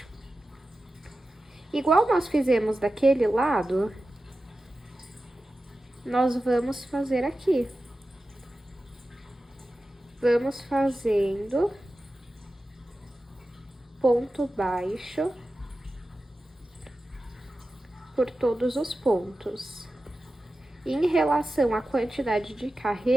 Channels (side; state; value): both; normal; correlation 0.94